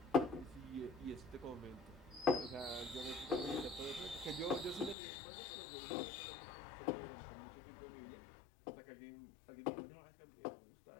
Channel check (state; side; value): drops out; right; at 5.0 s